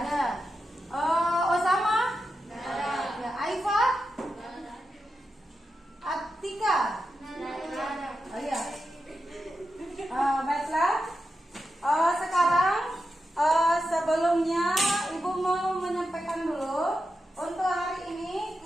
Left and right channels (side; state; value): both; normal; correlation 0.89